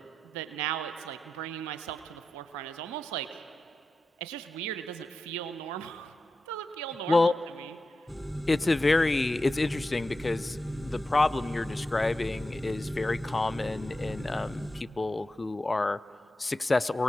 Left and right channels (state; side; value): normal; both; correlation 0.91